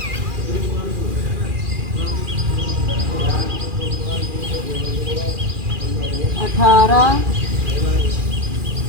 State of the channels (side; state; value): left; late; 2.4 ms